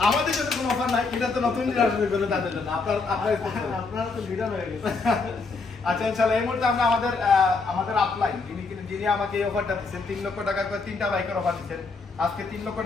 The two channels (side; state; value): right; quieter; 4.2 dB